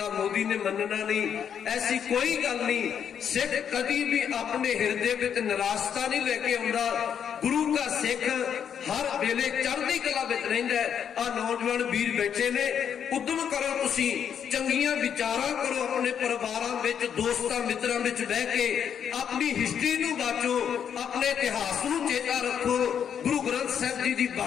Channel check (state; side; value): quieter; right; 8.2 dB